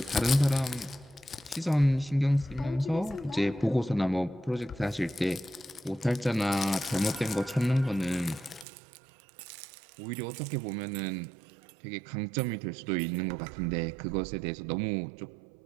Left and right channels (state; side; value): drops out; left; at 8.7 s